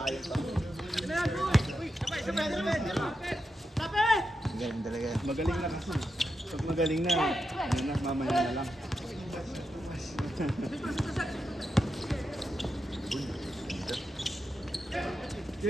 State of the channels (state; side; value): normal; both; correlation 0.87